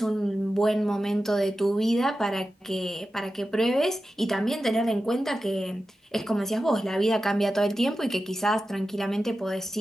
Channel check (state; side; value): normal; both; correlation 0.93